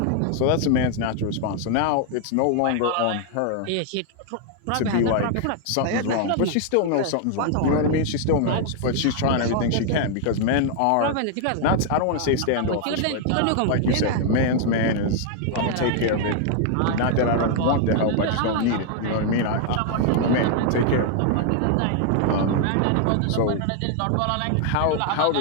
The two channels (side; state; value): both; different; correlation 0.00